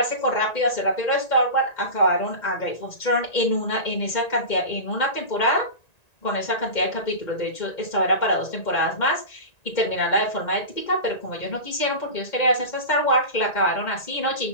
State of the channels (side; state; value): right; late; 1.9 ms